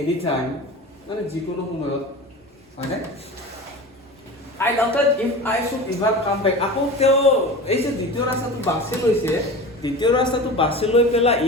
time মানে যিকোনো সময়ত মানে I doubted if I should ever come back আকৌ তেওঁ এই যে দ্বিতীয় ৰাস্তাটো বাছি লৈছে দ্বিতীয় ৰাস্তাটো বাছি লৈ পেলা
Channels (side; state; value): both; normal; correlation 0.32